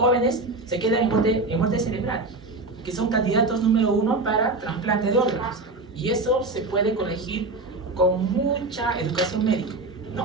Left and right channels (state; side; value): quieter; left; 3.2 dB